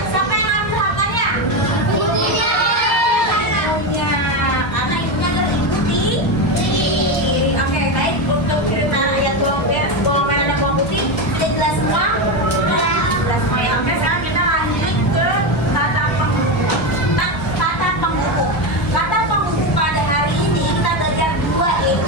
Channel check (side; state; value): right; late; 1.3 ms